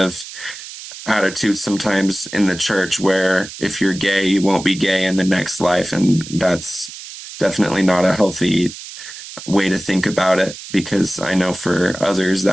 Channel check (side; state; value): right; noise; hiss, 13 dB below the sound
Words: attitude sometimes in the church where if you're gay, you won't be gay in the next life. And that's definitely not a healthy way to think about it, because I know for others